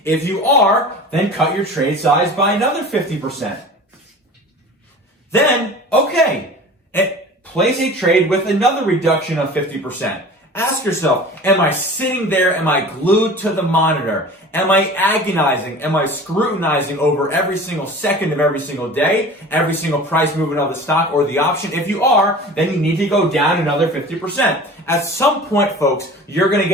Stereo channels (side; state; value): both; normal; correlation 0.39